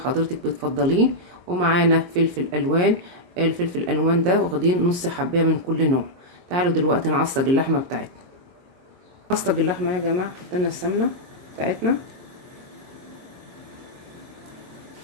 بتفضليه، ومعانا فلفل الوان. الفلفل الالوان ده واخدين نص حبايه من كل نوع. تعالوا دلوقتي نعصج اللحمه بتاعتنا. نعصج اللحمه يا جماعه. حطينا السمنه بتاعتنا،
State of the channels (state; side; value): late; left; 22 ms